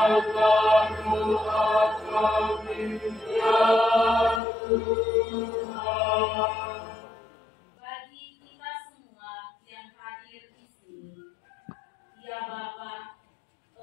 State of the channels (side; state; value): right; drops out; at 4.4 s